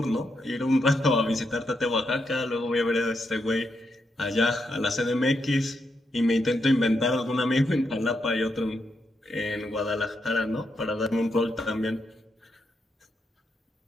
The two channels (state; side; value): normal; both; correlation 0.82